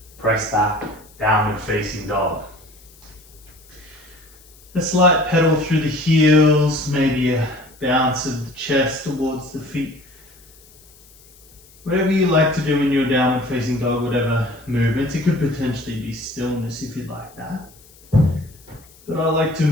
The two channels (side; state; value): left; noise; hiss, 26 dB below the sound